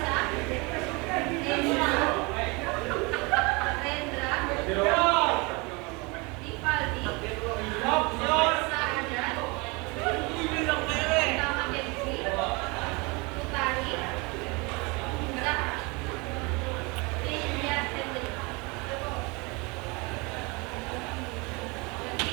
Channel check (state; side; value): quieter; left; 27.7 dB